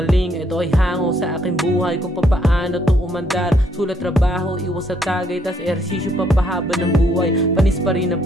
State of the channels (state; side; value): normal; both; correlation 0.70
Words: Ito ay hango sa aking buhay kung papaano to umandar. Sulat, trabaho, iwas sa tagay, tas ehersisyo papahaba ng buhay. Panis pa rin